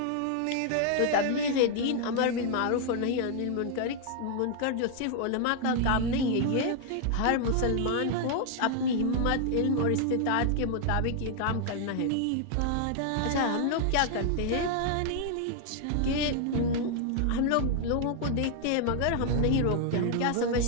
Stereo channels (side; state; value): both; different; correlation 0.00